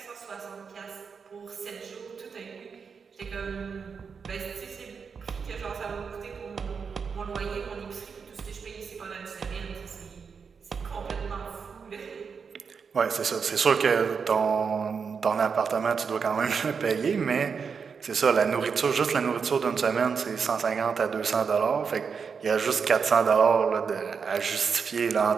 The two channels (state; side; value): quieter; left; 5.9 dB